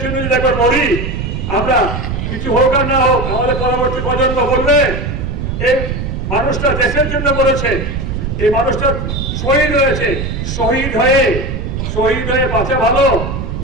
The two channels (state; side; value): noise; right; rumble, 4 dB below the sound